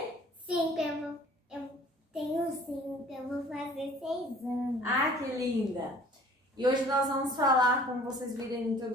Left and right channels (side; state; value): both; normal; correlation 0.51